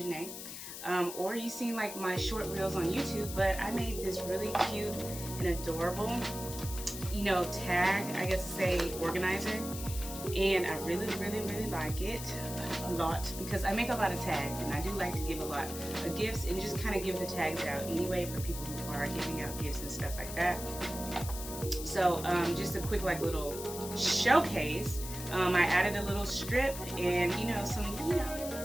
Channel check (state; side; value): noise; left; hiss, 9 dB below the sound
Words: or you've seen like my short reels on YouTube, but I made this really cute and adorable, tag, I guess to say, organizer. And I really like it a lot because I make a lot of tags and I do like to give a lot of gifts and just kind of give the tags out anyway for people who are giving out gifts and stuff like that. So just a quick little showcase. I added a little strip and some